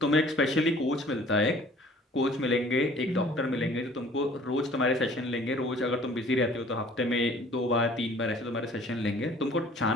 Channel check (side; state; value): both; normal; correlation 0.52